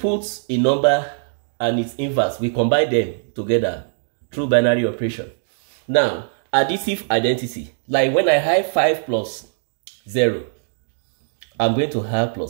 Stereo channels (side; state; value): left; silent; digital silence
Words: a number and its inverse. We combine them together through binary operation. Now, additive identity, like when I have 5 plus 0, I'm going to have